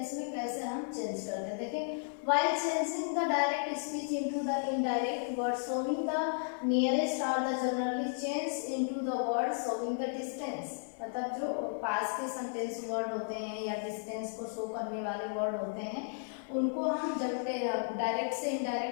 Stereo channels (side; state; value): right; silent; 55 dB below the other